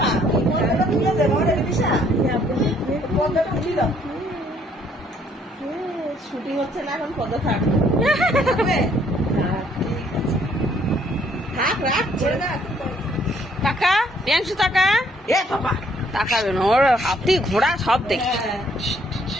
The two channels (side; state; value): both; normal; correlation 0.65